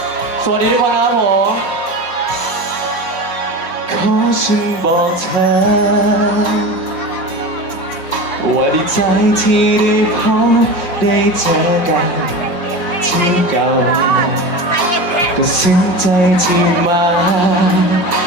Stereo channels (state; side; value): late; right; 5.6 ms